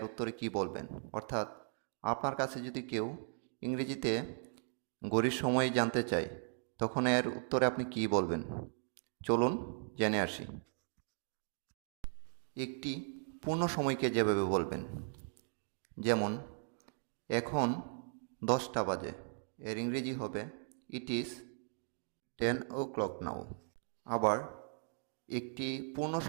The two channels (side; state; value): left; silent; digital silence